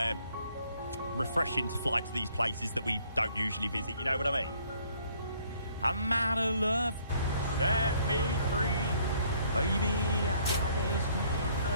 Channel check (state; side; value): inverted; both; correlation -0.63